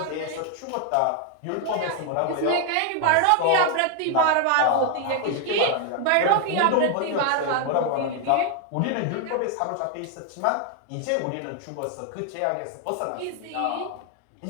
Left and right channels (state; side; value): different; both; correlation 0.00